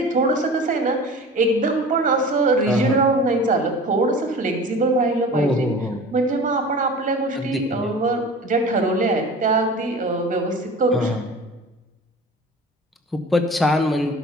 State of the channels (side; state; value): both; normal; correlation 0.38